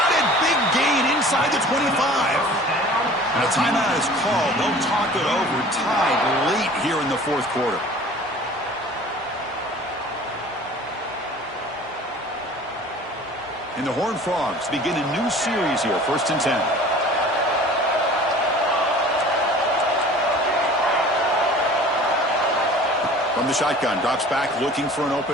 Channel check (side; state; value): both; normal; correlation 0.45